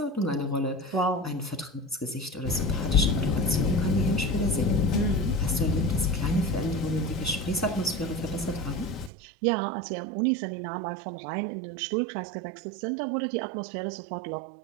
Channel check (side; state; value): left; drops out; at 9.1 s